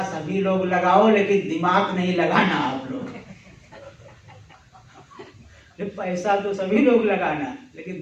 सभी लोग लगाओ लेकिन दिमाग नहीं लगाना आप लोग। पैसा तो सभी लोग लगाना लेकिन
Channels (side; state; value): both; identical; correlation 1.00